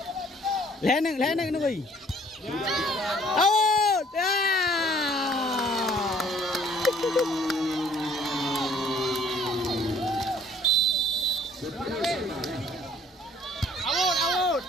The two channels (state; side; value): normal; both; correlation 0.58